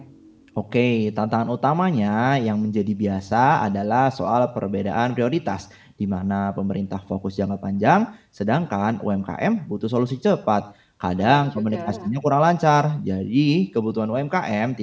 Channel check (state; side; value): identical; both; correlation 1.00